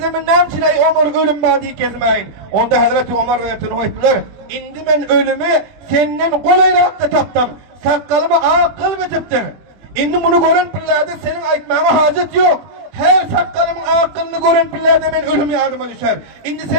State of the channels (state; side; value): late; left; 21 ms